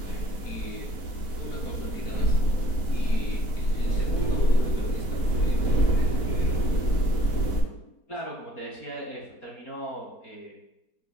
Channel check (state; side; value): late; right; 4.1 ms